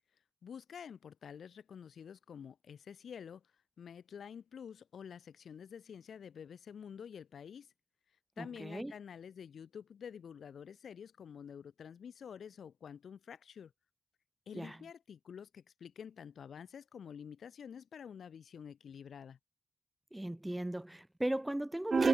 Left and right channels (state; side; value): normal; both; correlation 0.91